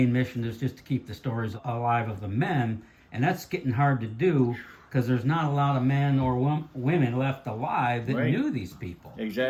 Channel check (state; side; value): identical; both; correlation 1.00